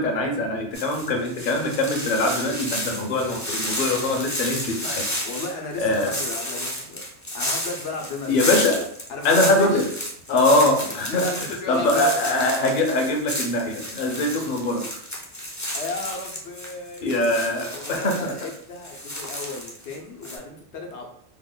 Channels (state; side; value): normal; both; correlation 0.09